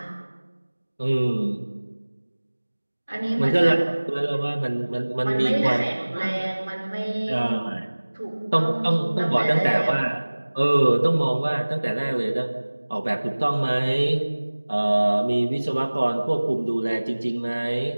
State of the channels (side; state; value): both; inverted; correlation -1.00